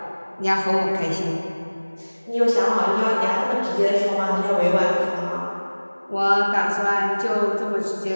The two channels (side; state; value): both; inverted; correlation -1.00